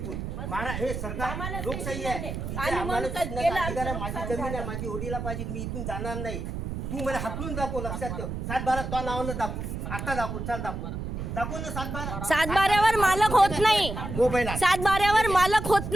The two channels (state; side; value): noise; right; rumble, 5 dB below the sound